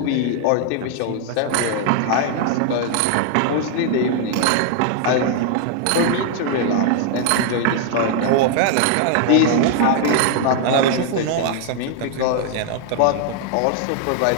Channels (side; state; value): both; different; correlation 0.00